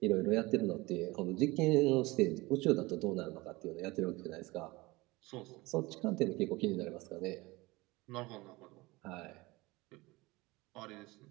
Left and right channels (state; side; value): quieter; left; 21.9 dB